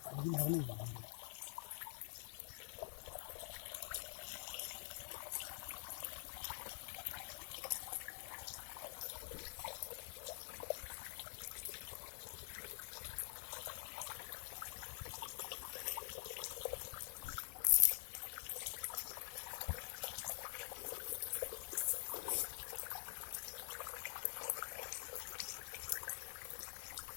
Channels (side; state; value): right; silent; digital silence